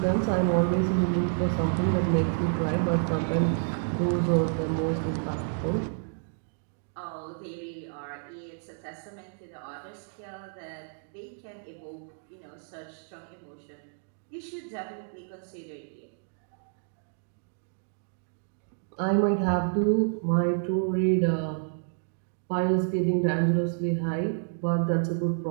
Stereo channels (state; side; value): silent; left; digital silence